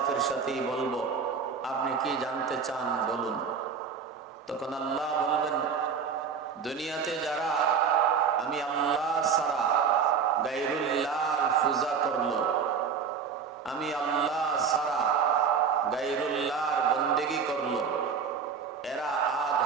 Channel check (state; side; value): quieter; left; 6.2 dB